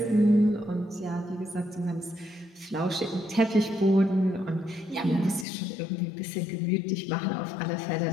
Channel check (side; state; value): right; drops out; at 5.5 s